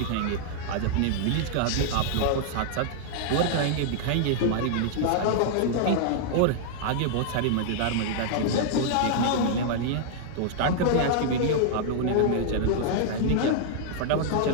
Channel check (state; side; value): different; both; correlation -0.01